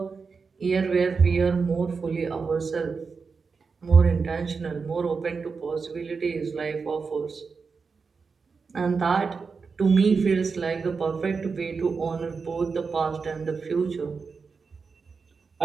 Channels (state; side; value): quieter; left; 5.0 dB